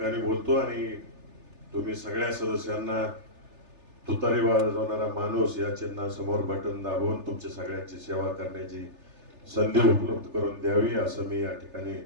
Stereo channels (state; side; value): late; left; 3.4 ms